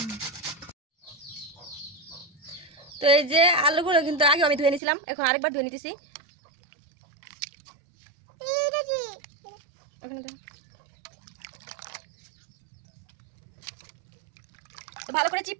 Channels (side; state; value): left; drops out; at 4.8 s